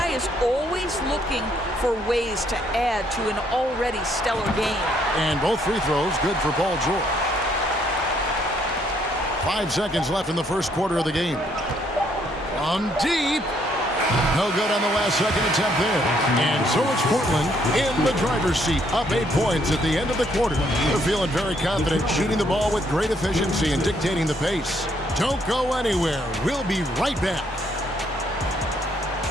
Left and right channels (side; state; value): both; normal; correlation 0.69